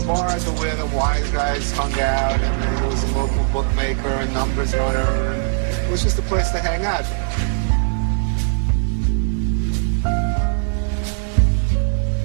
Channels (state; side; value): silent; left; digital silence